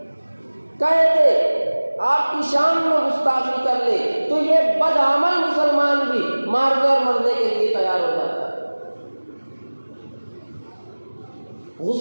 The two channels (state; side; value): inverted; both; correlation -1.00